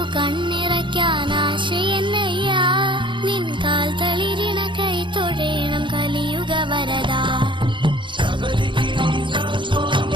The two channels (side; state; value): left; late; 0.23 ms